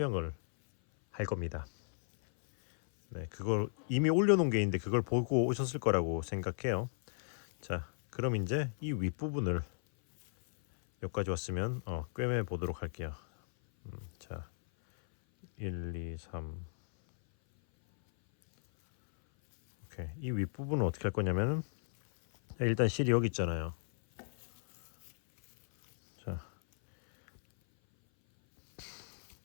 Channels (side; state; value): right; silent; 55 dB below the other